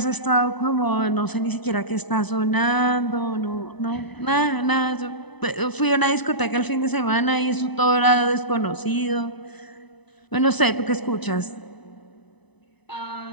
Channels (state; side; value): late; right; 1.0 ms